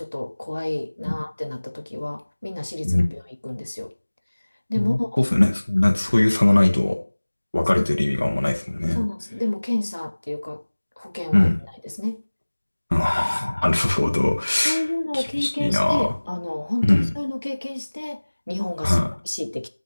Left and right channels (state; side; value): inverted; both; correlation -1.00